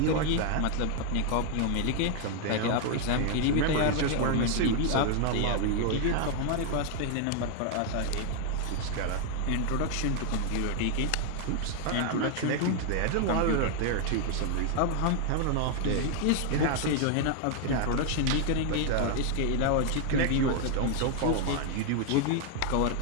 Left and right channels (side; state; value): both; different; correlation 0.00